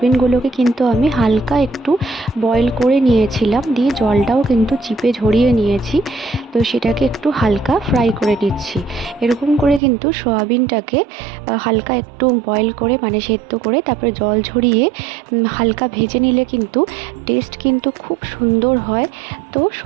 কিন্তু আমি হালকা একটু বয়েল করে নিয়েছিলাম, দিয়ে জলটাও কিন্তু চিপে ঝরিয়ে নিয়েছি। তো সেটাকে একটু হালকা ফ্রাই করে নিচ্ছি। এরকম করে কিন্তু সোয়াবিনটাকে হালকা একটু বয়েল করে মানে সেদ্ধ করে তারপরে জল ঝরিয়ে হালকা ভেজে নিলে কিন্তু টেস্ট কিন্তু খুব সুন্দর হয়। তো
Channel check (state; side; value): drops out; left; at 9.8 s